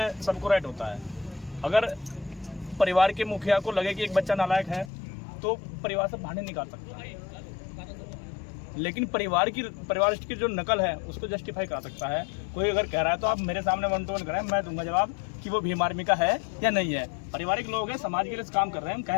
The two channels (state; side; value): drops out; right; at 4.9 s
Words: सबको राइट होता है। अगर परिवार के मुखिया को लगे कि एक बच्चा नालायक है तो परिवार से बाहर नहीं निकाल सकता, लेकिन परिवार की जो नकल है उसको जस्टिफाई करा सकता है। कोई अगर कह रहा है तो आप मेरे सामने 1 to 1 कराएं, मैं दूंगा जवाब कि वो भीम आर्मी का है या नहीं है। पारिवारिक लोग हैं, समाज के लिए काम कर रहे हैं, हम